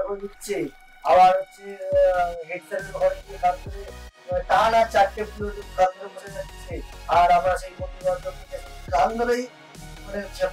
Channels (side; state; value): both; identical; correlation 1.00